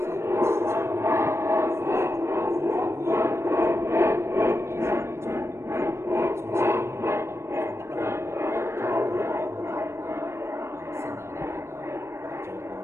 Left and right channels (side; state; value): left; late; 0.13 ms